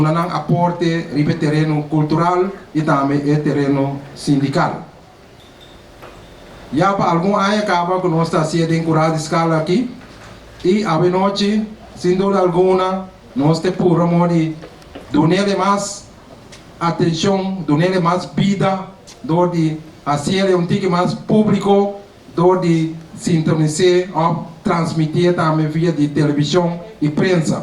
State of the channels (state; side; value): identical; both; correlation 1.00